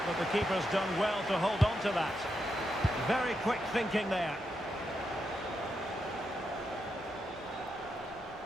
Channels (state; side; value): normal; both; correlation 0.84